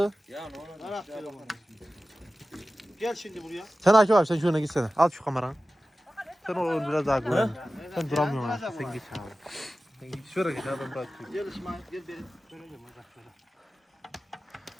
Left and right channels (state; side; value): normal; both; correlation 0.95